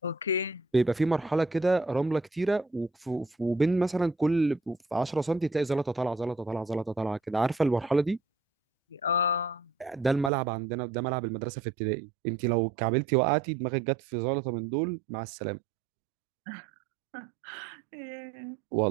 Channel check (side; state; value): left; drops out; at 10.3 s